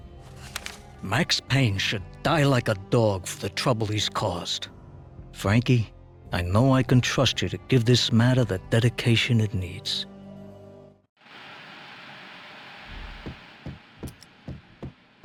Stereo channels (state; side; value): identical; both; correlation 1.00